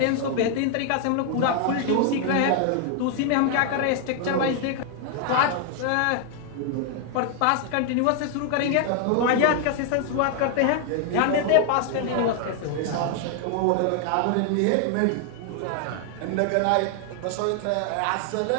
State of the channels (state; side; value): different; both; correlation 0.00